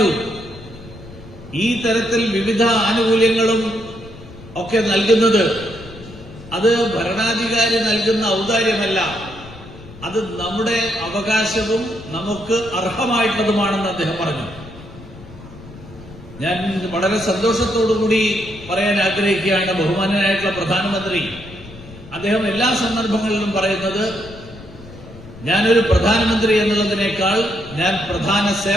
ഈ തരത്തിൽ വിവിധ ആനുകൂല്യങ്ങളും ഒക്കെ നൽകുന്നത് അത് ഭരണാധികാരി നൽകുന്ന ഔദാര്യമല്ല, അത് നമ്മുടെ അവകാശവും നമുക്ക് അർഹമായിട്ടുള്ളതുമാണെന്ന് അദ്ദേഹം പറഞ്ഞു. ഞാൻ വളരെ സന്തോഷത്തോടുകൂടി പറയാൻ ആഗ്രഹിക്കുകയാണ്, ബഹുമാന്യനായിട്ടുള്ള പ്രധാനമന്ത്രി അദ്ദേഹം എല്ലാ സന്ദർഭങ്ങളിലും പറയുന്നത്, ഞാനൊരു പ്രധാനമന്ത്രി എന്നുള്ളതിനേക്കാൾ ഞാൻ പ്രധാന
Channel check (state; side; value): noise; left; rumble, 18 dB below the sound